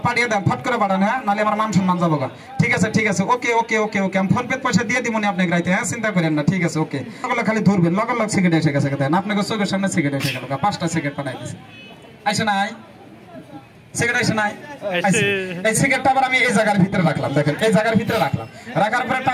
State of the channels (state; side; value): identical; both; correlation 1.00